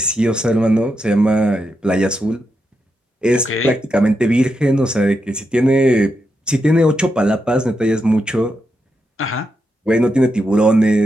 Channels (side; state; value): both; normal; correlation 0.84